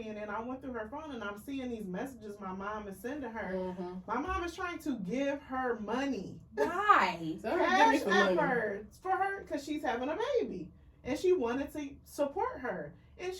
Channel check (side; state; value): both; identical; correlation 1.00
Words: and then I went through her phone and I'm seeing these messages my mom is sending her. Mm-hmm. My mom is trying to give her money. Why? So give me Cash some money. efforts for her because she's having a baby. And she wanted to support her. And